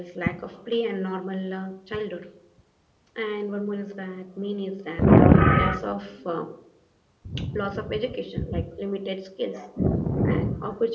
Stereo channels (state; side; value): identical; both; correlation 1.00